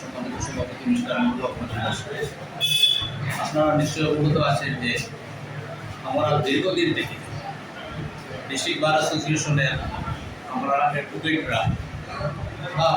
সভাপতি মিস্টার মঞ্জুর রহমান দাস। আপনারা নিশ্চয়ই অবগত আছেন যে আমরা দীর্ঘদিন থেকে ডিস্ট্রিক্ট বার অ্যাসোসিয়েশনের আমরা অ্যাডভোকেটরা বা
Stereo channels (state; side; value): identical; both; correlation 1.00